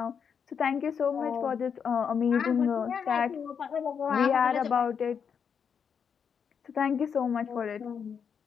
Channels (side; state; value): right; quieter; 6.9 dB